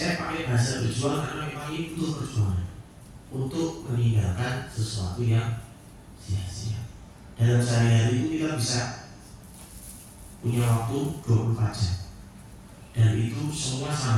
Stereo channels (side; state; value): both; identical; correlation 1.00